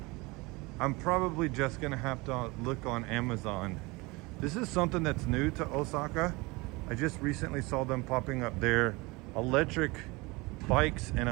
I'm probably just gonna have to look on Amazon. This is something that's new to Osaka. I just recently saw them popping up there. Electric bikes and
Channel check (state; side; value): quieter; left; 24.4 dB